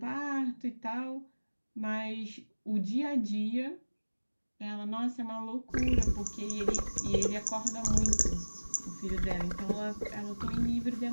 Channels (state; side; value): inverted; both; correlation -1.00